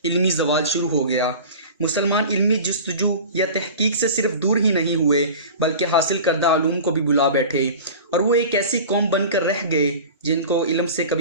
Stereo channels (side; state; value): both; inverted; correlation -0.36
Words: इल्मी ज़वाल शुरू हो गया। मुसलमान इल्मी जस्तजू या तहकीक से सिर्फ दूर ही नहीं हुए बल्कि हासिल करदा आलूम को भी बुला बैठे और वो एक ऐसी कौम बनकर रह गए जिनको इल्म से